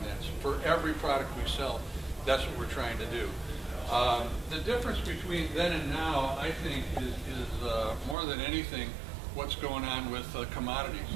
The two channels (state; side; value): drops out; left; at 8.2 s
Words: that. So for every product we sell, that's what we're trying to do. The difference between then and now, I think, is more than anything what's going on with commodities